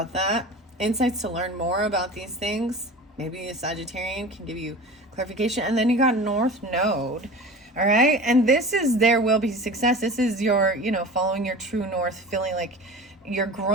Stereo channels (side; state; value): both; normal; correlation 0.36